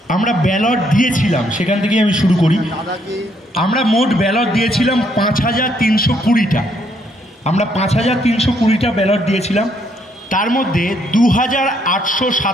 আমরা ব্যালট দিয়েছিলাম, সেখান থেকেই আমি শুরু করি। আমরা মোট ব্যালট দিয়েছিলাম 5320টা। আমরা 5320টা ব্যালট দিয়েছিলাম। তার মধ্যে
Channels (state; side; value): normal; both; correlation 0.70